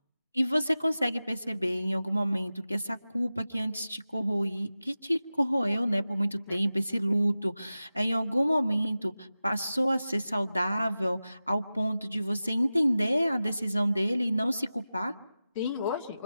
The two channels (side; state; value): both; inverted; correlation -0.95